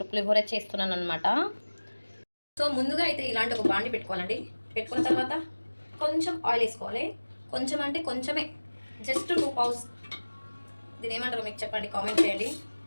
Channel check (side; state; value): both; inverted; correlation -1.00